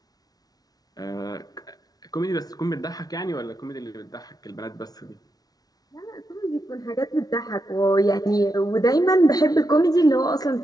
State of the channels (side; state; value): right; late; 0.19 ms